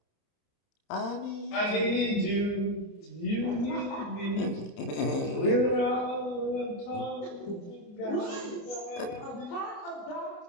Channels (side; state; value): right; late; 29 ms